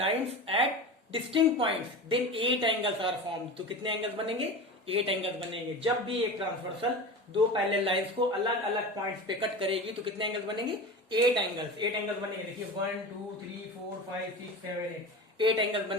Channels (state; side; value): normal; both; correlation 0.29